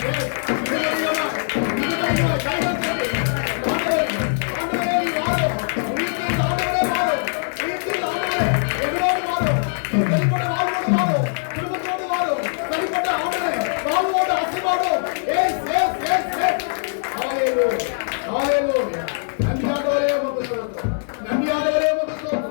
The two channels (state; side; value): silent; right; 58 dB below the other